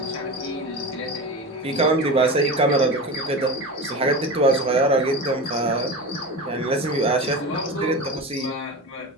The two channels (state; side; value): normal; both; correlation 0.28